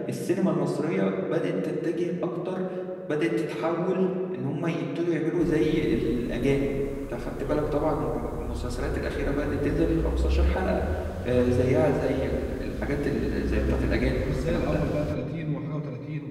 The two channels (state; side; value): identical; both; correlation 1.00